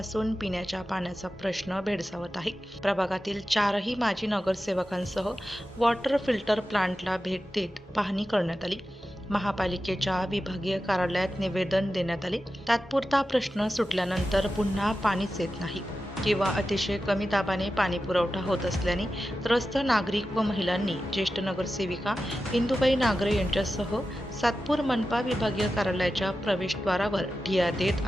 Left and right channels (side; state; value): both; normal; correlation 0.92